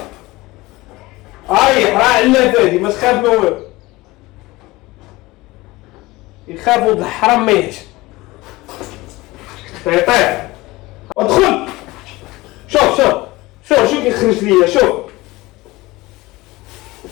راه علافه هادي ما تخاف ما والو، يخاف ولد الحرام ما يهجم. طيح ادخل. شوف شو كيخرج ليا. شوف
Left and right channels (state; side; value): quieter; right; 20.4 dB